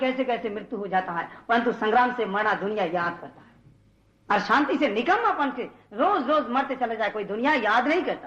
कैसे मृत्यु हो जाता है, परंतु संग्राम से मरना दुनिया याद करता है। और शांति से निकम्मापन से रोज रोज मरते चले जाए कोई दुनिया याद नहीं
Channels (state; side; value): identical; both; correlation 1.00